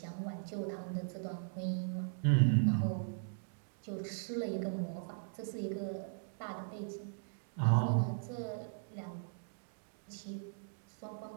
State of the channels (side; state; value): left; silent; digital silence